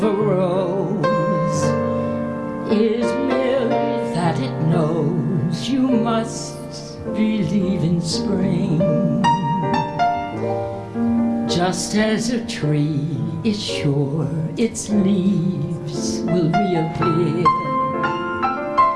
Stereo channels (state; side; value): identical; both; correlation 1.00